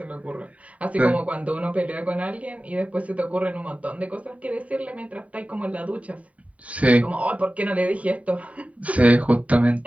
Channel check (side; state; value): left; late; 0.067 ms